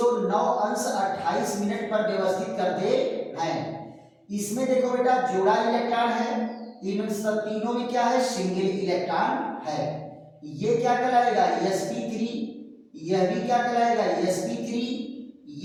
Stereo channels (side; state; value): both; identical; correlation 1.00